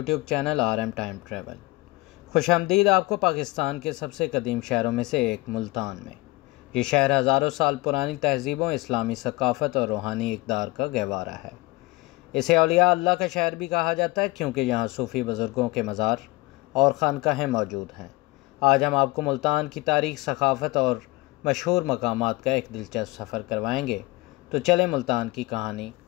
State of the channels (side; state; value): right; quieter; 22.1 dB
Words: channel RM time travel. खुशामदीद आपको पाकिस्तान के सबसे कदीम शहरों में से एक मुल्तान में। ये शहर हज़ारों साल पुरानी तहजीबों, इस्लामी सकाफ़त और रूहानी इक़दार का गहवारा है। इसे औलिया अल्लाह का शहर भी कहा जाता है क्योंकि यहाँ सूफ़ी बुज़ुर्गों के मज़ार और खानकाहें मौजूद हैं। आज हम आपको मुल्तान की तारीख़, सकाफ़त और मशहूर मकामात का एक दिलचस्प सफ़र करवाएंगे। तो चलें मुल्तान की कहानी